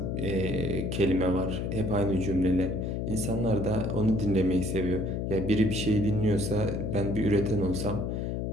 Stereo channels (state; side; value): noise; left; hum, 2 dB below the sound